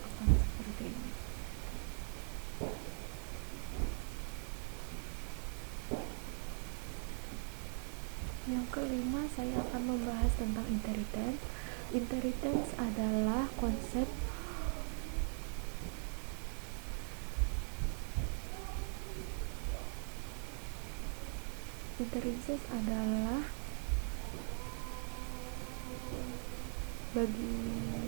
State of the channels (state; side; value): silent; left; 51 dB below the other